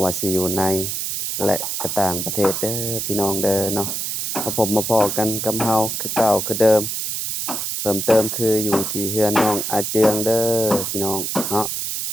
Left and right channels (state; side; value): noise; right; hiss, 2 dB below the sound